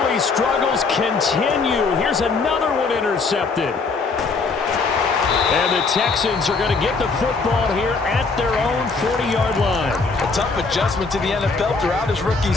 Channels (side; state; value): right; quieter; 4.3 dB